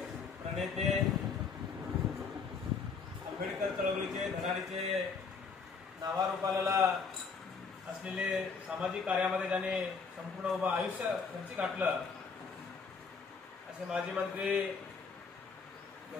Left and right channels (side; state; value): right; quieter; 5.2 dB